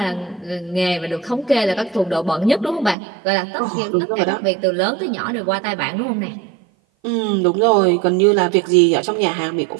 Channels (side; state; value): left; drops out; at 3.0 s